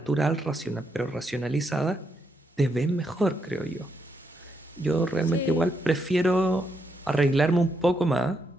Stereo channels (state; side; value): normal; both; correlation 0.79